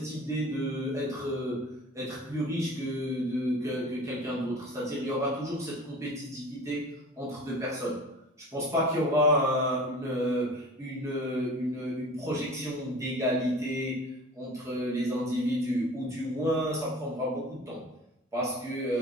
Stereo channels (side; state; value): both; normal; correlation 0.41